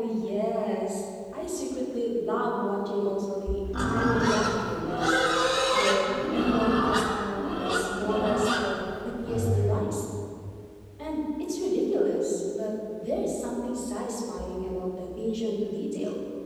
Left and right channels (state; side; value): identical; both; correlation 1.00